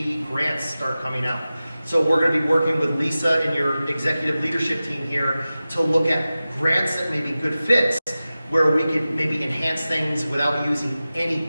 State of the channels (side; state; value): both; inverted; correlation -0.95